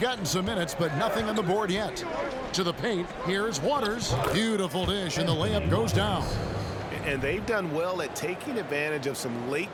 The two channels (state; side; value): identical; both; correlation 1.00